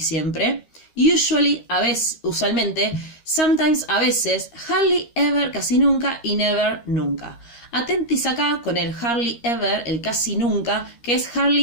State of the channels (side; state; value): right; late; 13 ms